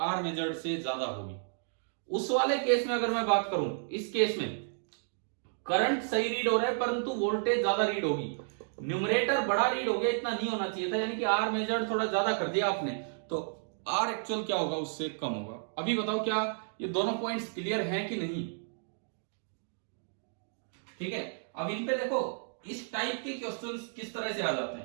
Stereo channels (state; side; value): silent; left; digital silence